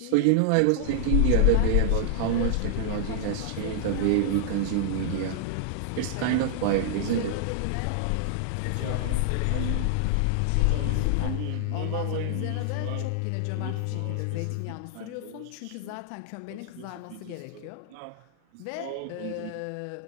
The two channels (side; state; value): both; different; correlation -0.01